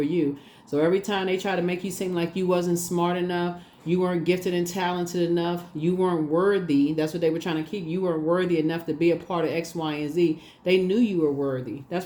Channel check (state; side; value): identical; both; correlation 1.00